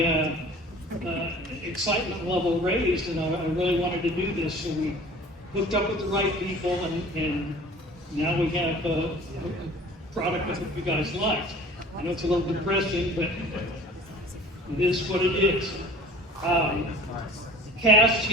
excitement level raised, and I really wanted to do this. So we hooked up with the right people, and now we have a product that you guys like. I know it's a little depressing, but it is what it is. Cast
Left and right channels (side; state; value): both; normal; correlation 0.45